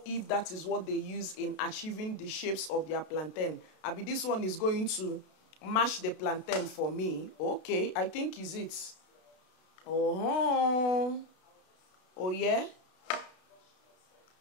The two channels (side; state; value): right; late; 32 ms